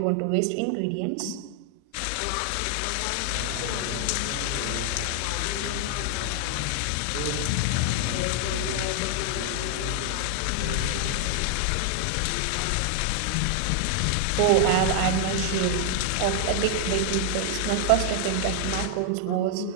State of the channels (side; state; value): both; different; correlation 0.00